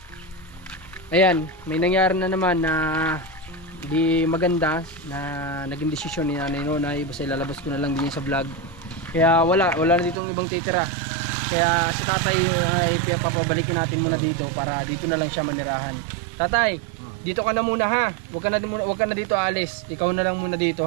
ayan, may nangyari na naman na di maganda na naging desisyon ni Nanay Nonay. Basta ilalabas ko na lang din sa vlog. Kaya wala na ditong ibang titira. Kaya si Tatay ay papabalikin natin muna dito para dito na lang siya manirahan. Tatay, dito ka na muna ha. Huwag ka na dito alis. Ikaw na lang muna dito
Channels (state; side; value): drops out; left; at 10.2 s